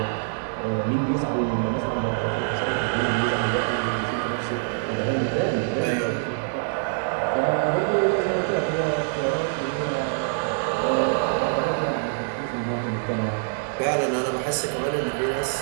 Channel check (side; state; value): left; silent; 60 dB below the other